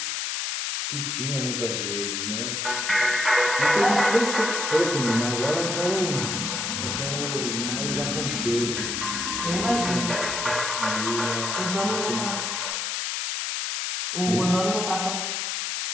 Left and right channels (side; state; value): left; noise; hiss, 1 dB below the sound